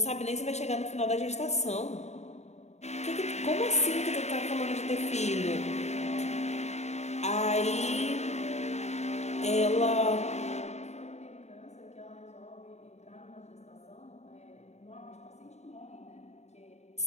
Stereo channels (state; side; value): late; right; 0.32 ms